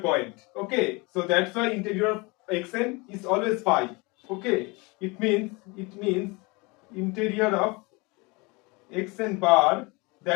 Okay, so that's why interior of xn is always phi. Okay, it means interior of xn bar,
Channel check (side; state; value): right; quieter; 26.7 dB